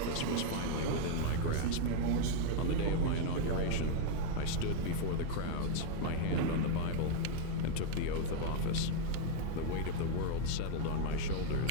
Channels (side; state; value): both; different; correlation 0.00